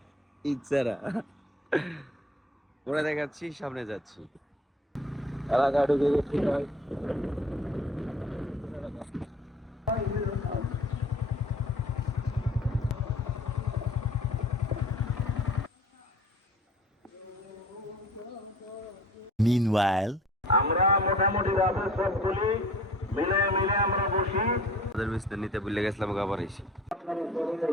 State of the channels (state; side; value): normal; both; correlation 0.47